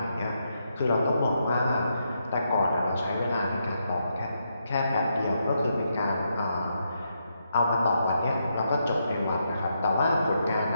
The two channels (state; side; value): inverted; both; correlation -0.81